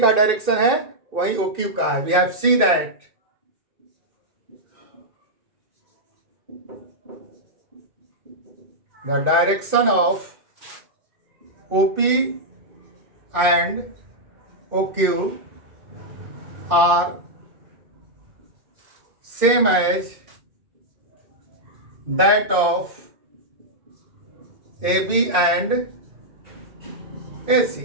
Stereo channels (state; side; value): late; left; 2.5 ms